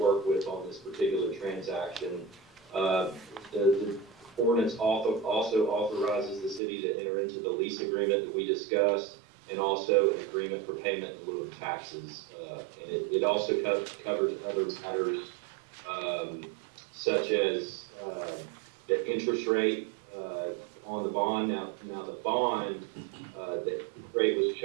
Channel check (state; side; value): drops out; left; at 6.6 s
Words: with on this particular transaction. The ordinance also authorizes the city to enter into the lease agreement that we discussed, and also an agreement for payment in lieu of taxes. And it also covers other matters such as the interest rate on the bond. Now the bond that rate was